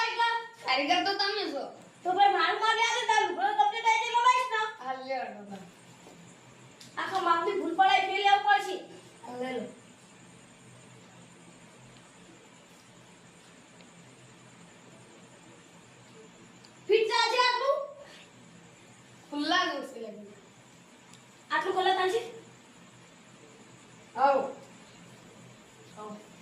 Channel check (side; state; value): both; identical; correlation 1.00